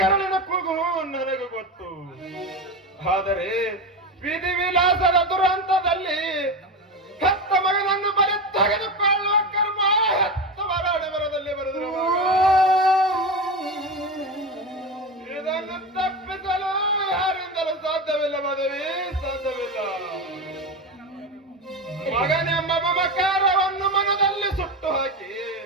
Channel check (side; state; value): both; normal; correlation 0.20